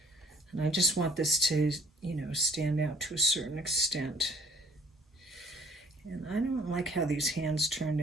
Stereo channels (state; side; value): normal; both; correlation 0.58